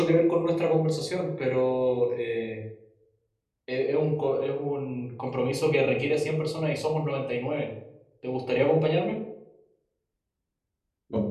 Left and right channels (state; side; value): identical; both; correlation 1.00